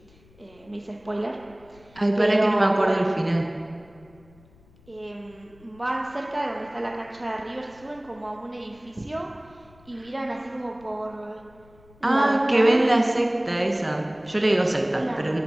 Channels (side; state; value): left; noise; rumble, 27 dB below the sound